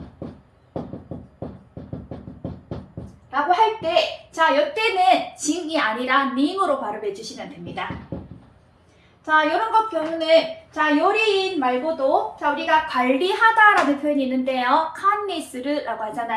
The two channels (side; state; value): both; identical; correlation 1.00